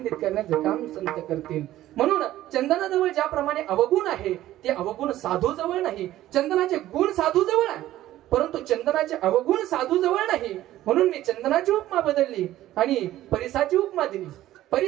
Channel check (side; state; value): left; quieter; 14.3 dB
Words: करण्याचं काम संत करतील. म्हणून चंदनाजवळ ज्याप्रमाणे अवगुण आहे ते अवगुण साधू जवळ नाही. चंदनाचे गुण साधू जवळ आहे परंतु चंदनाचे अवगुण साधू जवळ नाही. म्हणून मी चंदनाची उपमा बदलली आणि परिसाची उपमा दिली.